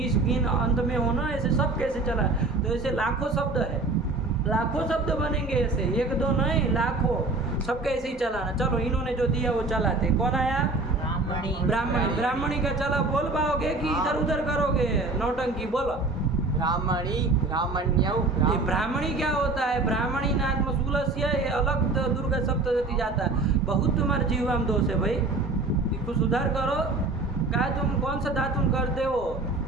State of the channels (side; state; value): left; quieter; 3.3 dB